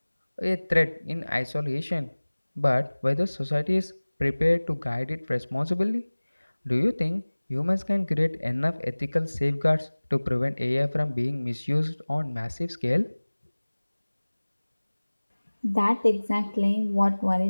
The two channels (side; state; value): both; inverted; correlation -1.00